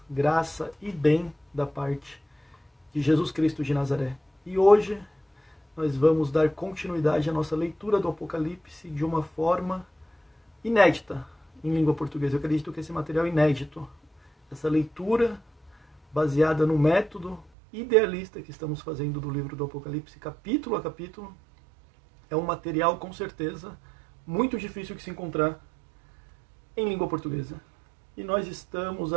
graça e bem da parte de Jesus Cristo de Nazaré. E hoje nós vamos dar continuidade à nossa leitura do Apocalipse de uma forma inédita em língua portuguesa. Eu acredito que esse material é inédito. Essa leitura baseada no método idealista que estamos fazendo do livro do Apocalipse, capítulo a capítulo, é um material com certeza muito difícil de se encontrar em língua portuguesa. E nós estamos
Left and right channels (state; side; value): drops out; left; at 17.5 s